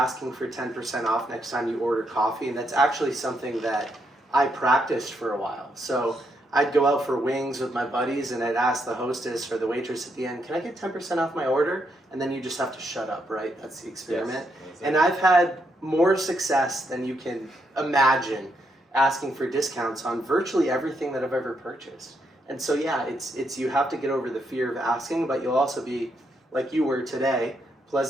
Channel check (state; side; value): normal; both; correlation 0.78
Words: for 10% off next time you order coffee, and that's actually something that I practiced for a while. So I'd go out for wings with my buddies and I'd ask the hostess or the waitress at the end, can I get 10% off my order? And then you just have to shut up, right? That's the experiment. Yes, and I've had more success than you can imagine asking for discounts on virtually everything that I've ever purchased. And so yeah, it's you have to get over the fear of asking, but you'll also be, like you were today,